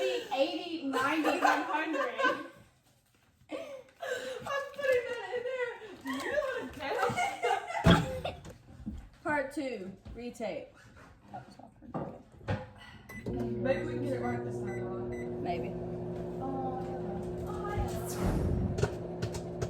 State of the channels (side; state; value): both; identical; correlation 1.00